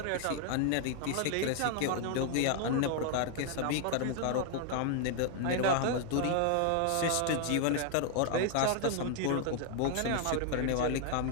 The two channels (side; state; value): both; different; correlation 0.00